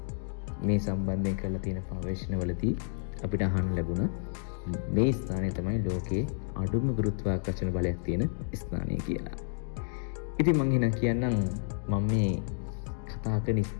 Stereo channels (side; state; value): right; silent; digital silence